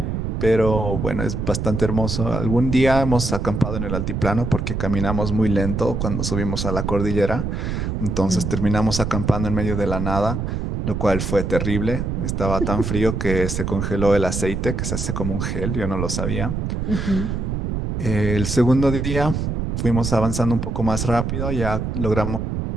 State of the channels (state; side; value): noise; right; rumble, 2 dB below the sound